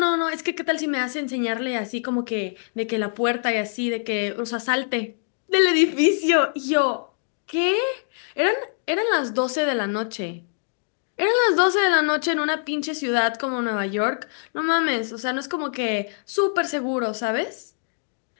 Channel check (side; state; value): right; silent; digital silence